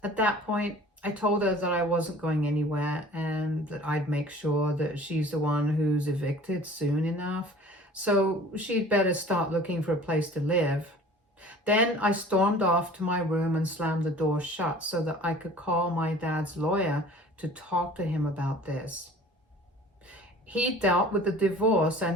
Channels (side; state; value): both; normal; correlation 0.46